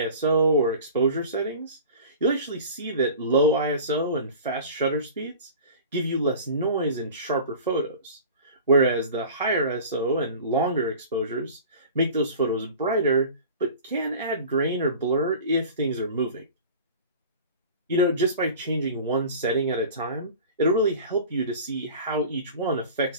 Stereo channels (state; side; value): inverted; both; correlation -0.40